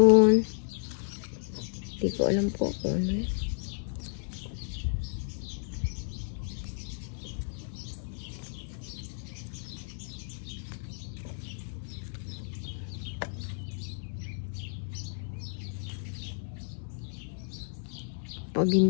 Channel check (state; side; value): silent; right; digital silence